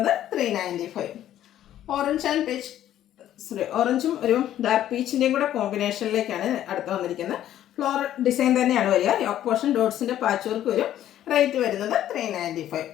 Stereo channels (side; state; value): right; quieter; 12.0 dB